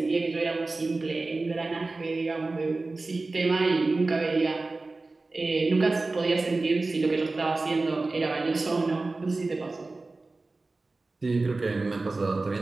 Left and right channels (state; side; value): quieter; left; 3.4 dB